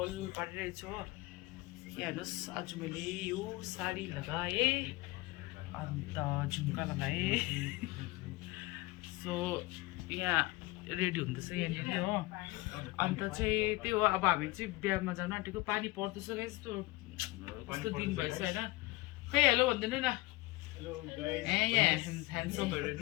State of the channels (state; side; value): quieter; right; 21.7 dB